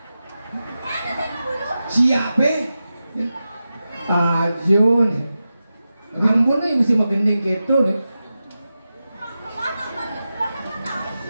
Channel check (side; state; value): both; inverted; correlation -0.92